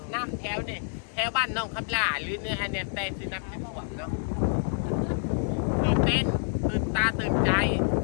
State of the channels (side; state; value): right; silent; digital silence